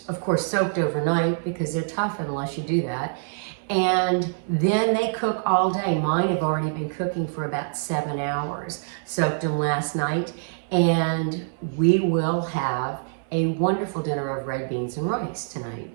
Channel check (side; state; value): left; silent; digital silence